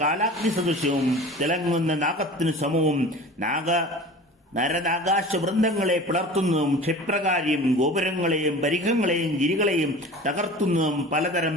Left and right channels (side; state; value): both; normal; correlation 0.38